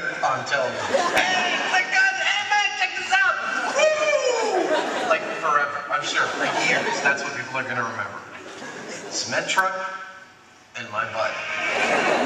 on television. Hey, my God, hey man, check this out! Woo! Like forever, I'm sure, for years. That's what people are going to remember. Cement truck and my butt.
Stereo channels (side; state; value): both; identical; correlation 1.00